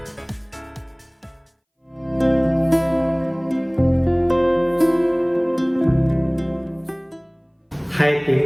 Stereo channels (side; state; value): both; identical; correlation 1.00